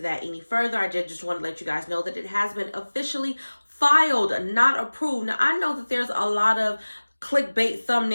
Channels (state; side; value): inverted; both; correlation -1.00